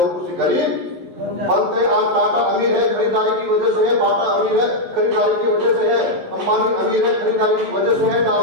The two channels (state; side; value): late; left; 11 ms